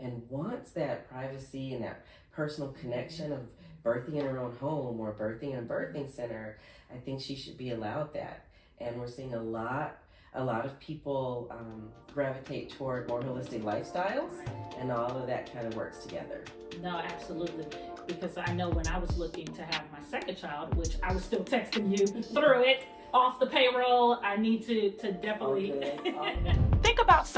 wants that privacy and that personal connection of birthing in her own home or birthing in a birthing center, I think she should be allowed that. And we're seeing a lot of people gravitate toward more holistic lifestyles, and all of that kind of works together. No, absolutely. Because I know when I was looking to have my second child, which I was still texting you through it, off the payroll, I need to definitely think about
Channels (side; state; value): both; identical; correlation 1.00